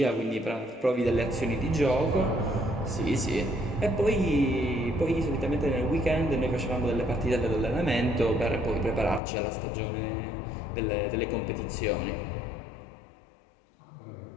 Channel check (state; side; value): drops out; right; at 9.2 s